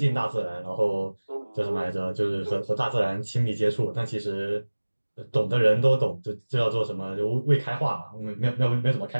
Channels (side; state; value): both; inverted; correlation -1.00